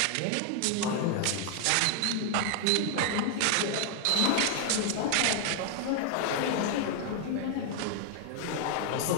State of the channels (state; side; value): different; both; correlation 0.00